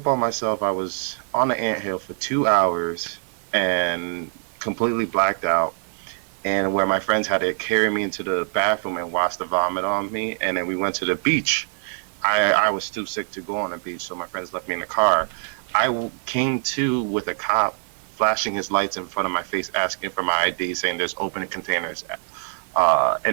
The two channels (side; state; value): left; silent; 63 dB below the other